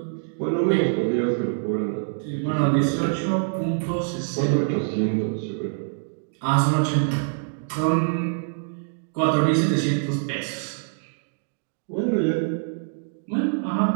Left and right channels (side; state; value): left; silent; digital silence